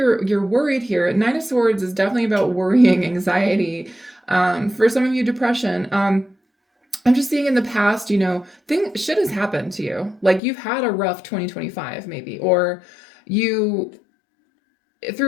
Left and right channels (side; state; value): right; drops out; at 10.4 s